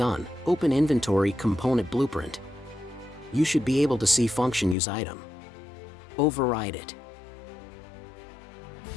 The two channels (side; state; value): right; drops out; at 4.8 s